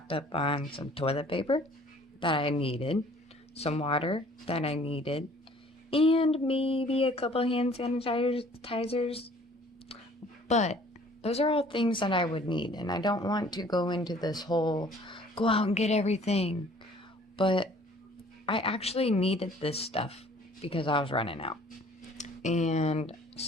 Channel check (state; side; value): normal; both; correlation 0.54